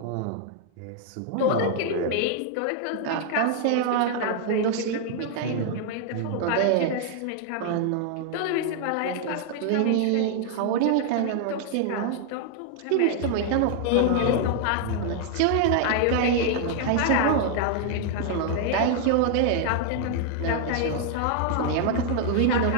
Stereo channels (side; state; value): both; different; correlation 0.00